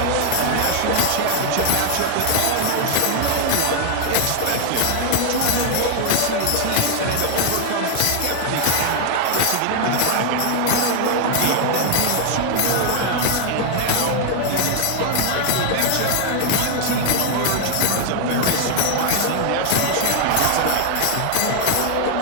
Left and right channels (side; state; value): both; different; correlation 0.00